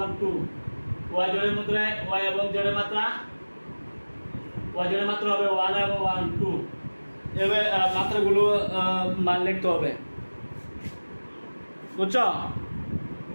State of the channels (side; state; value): both; inverted; correlation -1.00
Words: 1 2, y জোড়ের মধ্যে y এবং z এর মাত্রা, y জোড়ের মাত্রা হবে 1 এবং 1 2। এভাবে মাত্রাগুলো মান লিখতে হবে, বুঝছো?